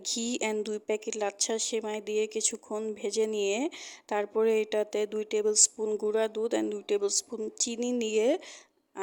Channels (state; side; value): identical; both; correlation 1.00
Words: ঘি অ্যান্ড 2 প্যাকেট লাচ্ছা সেমাই দিয়ে কিছুক্ষণ ভেজে নিয়ে তারপরে এটাতে 2 টেবিল স্পুন গুঁড়া দুধ অ্যান্ড 2 টেবিল স্পুন চিনি নিয়ে